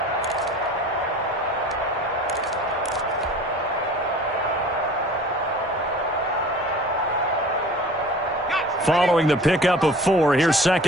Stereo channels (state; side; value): normal; both; correlation 0.44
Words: Following the pickup of 4, here's